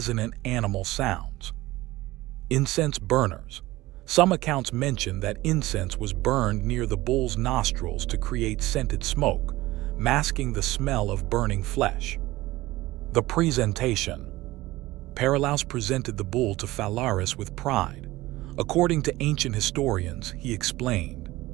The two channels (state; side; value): quieter; left; 18.3 dB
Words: animal sounds. Incense burners. Some accounts mention that incense was burned near the bull's nostrils to create scented smoke, masking the smell of burning flesh. The presentation. Phalaris presented the bull to Phalaris with pride. According to ancient historians, he explained,